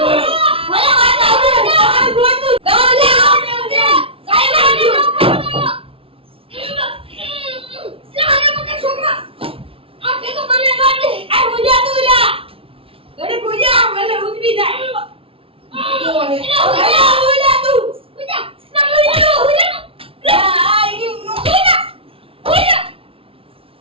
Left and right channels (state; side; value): late; left; 0.26 ms